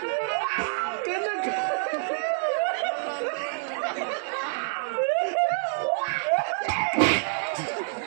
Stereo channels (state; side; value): silent; left; digital silence